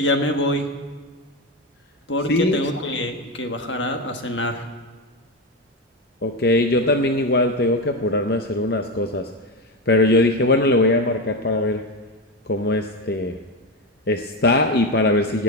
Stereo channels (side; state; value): both; normal; correlation 0.15